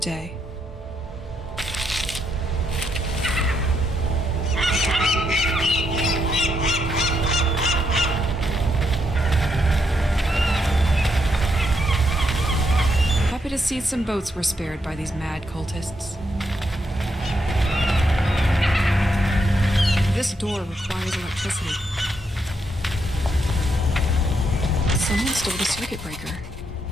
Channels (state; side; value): normal; both; correlation 0.79